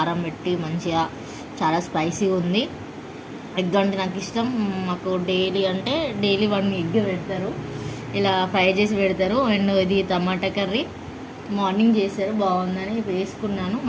పెట్టి మంచిగా, చాలా స్పైసీగా ఉంది. ఎగ్ అంటే నాకు ఇష్టం. మాకు డైలీ 1 ఎగ్ పెడతారు, ఇలా ఫ్రై చేసి పెడతారు. అండ్ ఇది టమాటా కర్రీ మార్నింగ్ చేశారు, బాగుందని వేసుకున్నాను.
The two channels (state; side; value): identical; both; correlation 1.00